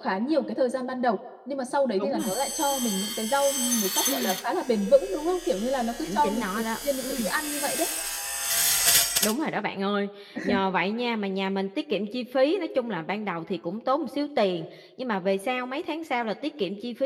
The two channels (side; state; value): both; identical; correlation 1.00